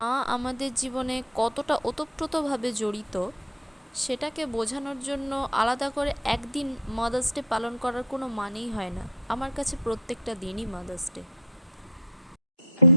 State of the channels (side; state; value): both; normal; correlation 0.31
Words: মা আমাদের জীবনে কতটা ওতপ্রোতভাবে জড়িত সেটাকে বোঝানোর জন্য আলাদা করে একদিন মাদার্স ডে পালন করার কোনো মানেই হয় না। আমার কাছে প্রত্যেকটা দিনই মাদার্স ডে।